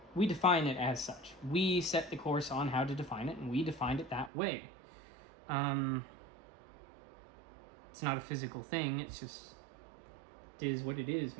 We define it as such. We set the course on how to define it, and we defined it that way. It's not a physical thing. It's just, it is what it is,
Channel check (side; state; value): left; drops out; at 4.3 s